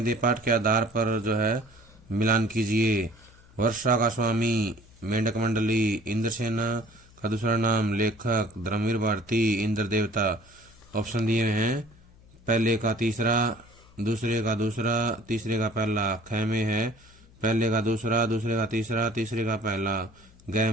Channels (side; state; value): left; noise; hum, 26 dB below the sound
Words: पाठ के आधार पर जो है मिलान कीजिए। वर्षा का स्वामी मेंढक मंडली, इंद्रसेना का दूसरा नाम लेखक, धर्मवीर भारती, इंद्र देवता। ऑप्शन दिए हैं, पहले का तीसरा, दूसरे का दूसरा, तीसरे का पहला। ख में है पहले का दूसरा, दूसरे का तीसरा, तीसरे का पहला। ग